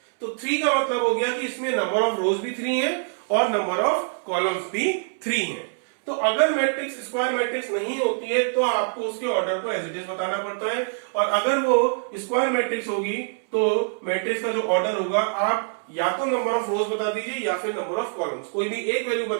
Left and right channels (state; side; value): silent; left; 62 dB below the other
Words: तो 3 का मतलब हो गया कि इसमें नंबर ऑफ रोज भी 3 है और नंबर ऑफ कॉलम्स भी 3 है। तो अगर मैट्रिक्स स्क्वायर मैट्रिक्स नहीं होती है तो आपको उसके ऑर्डर को एज इट इज बताना पड़ता है, और अगर वो स्क्वायर मैट्रिक्स होगी तो मैट्रिक्स का जो ऑर्डर होगा आप या तो नंबर ऑफ रोज बता दीजिए या फिर नंबर ऑफ कॉलम्स, कोई भी एक वैल्यू